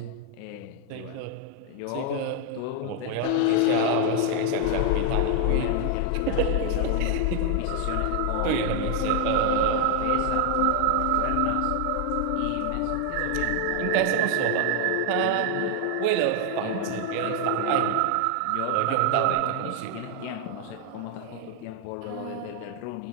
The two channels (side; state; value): both; different; correlation 0.00